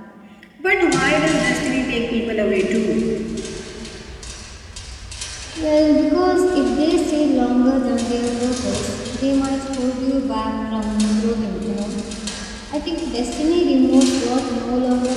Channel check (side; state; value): both; identical; correlation 1.00